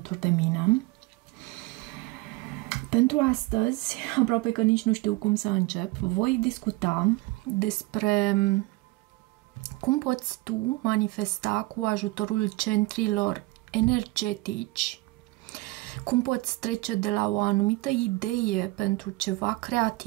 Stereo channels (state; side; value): quieter; left; 21.4 dB